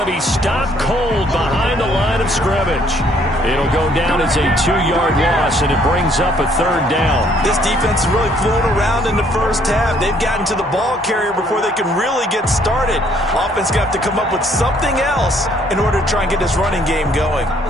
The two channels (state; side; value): normal; both; correlation 0.64